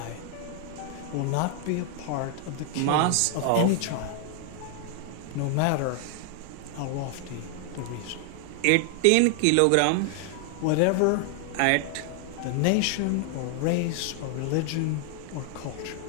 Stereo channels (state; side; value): different; both; correlation 0.00